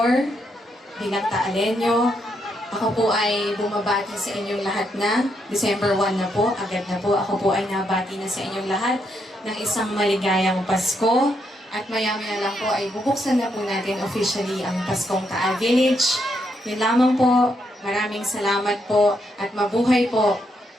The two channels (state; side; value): normal; both; correlation 0.78